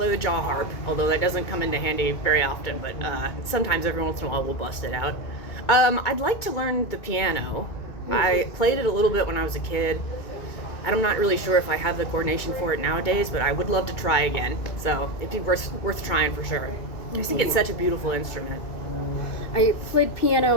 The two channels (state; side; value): late; right; 2.3 ms